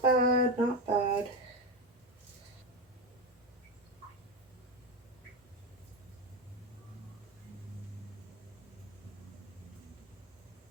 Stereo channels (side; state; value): both; normal; correlation 0.14